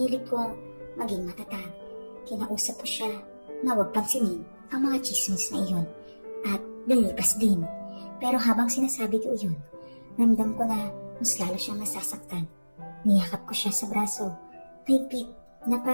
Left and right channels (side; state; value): both; inverted; correlation -1.00